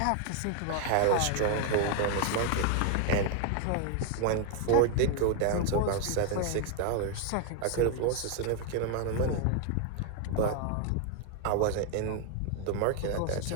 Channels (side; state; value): both; different; correlation 0.00